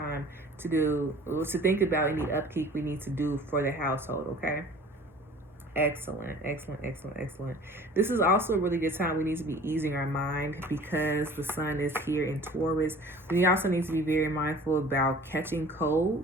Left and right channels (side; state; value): both; normal; correlation 0.46